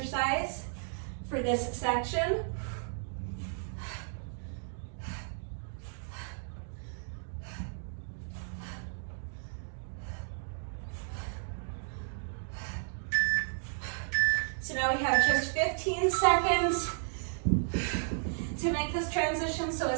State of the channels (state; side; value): silent; left; digital silence